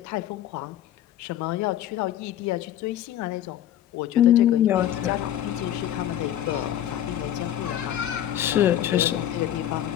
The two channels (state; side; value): quieter; right; 11.5 dB